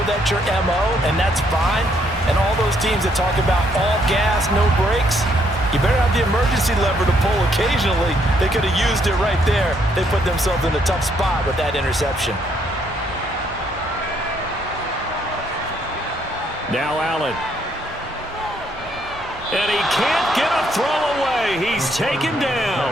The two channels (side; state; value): both; normal; correlation 0.71